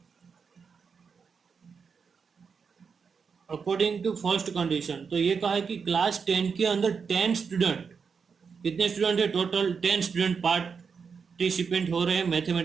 अकॉर्डिंग टू फर्स्ट कंडीशन तो ये कहा है कि क्लास 10 के अंदर 10 स्टूडेंट, कितने स्टूडेंट है टोटल 10 स्टूडेंट पार्टिसिपेंट हो रहे हैं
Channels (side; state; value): left; quieter; 5.8 dB